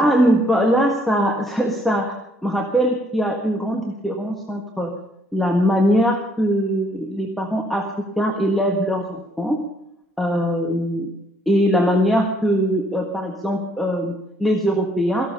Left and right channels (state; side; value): normal; both; correlation 0.67